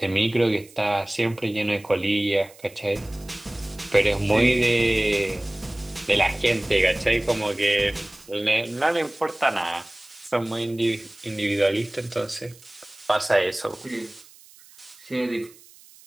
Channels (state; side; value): noise; right; hiss, 24 dB below the sound